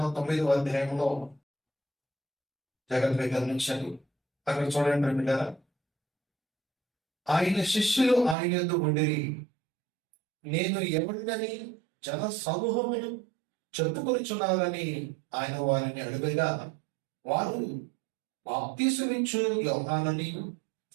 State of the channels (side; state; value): left; drops out; at 8.3 s